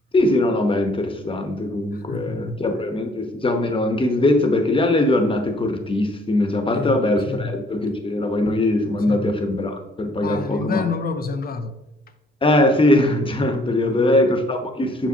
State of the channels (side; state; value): both; normal; correlation 0.62